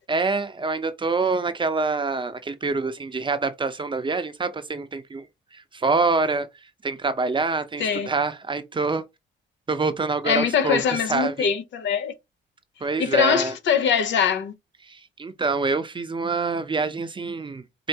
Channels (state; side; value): normal; both; correlation 0.25